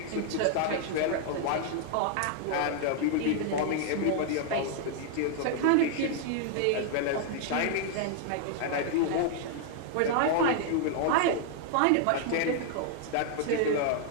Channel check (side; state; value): both; different; correlation 0.00